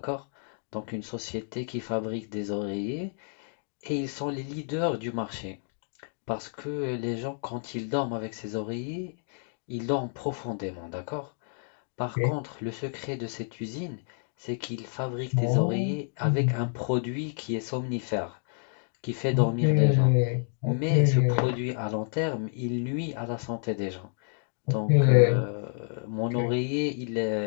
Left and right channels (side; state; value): right; silent; digital silence